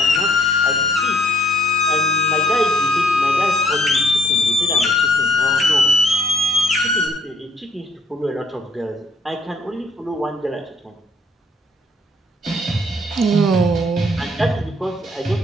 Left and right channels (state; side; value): normal; both; correlation 0.64